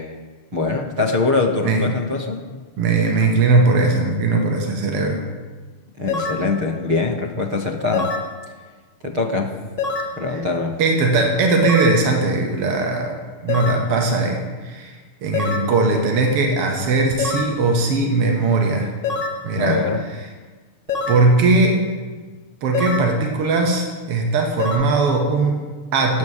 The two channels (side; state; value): left; late; 7.2 ms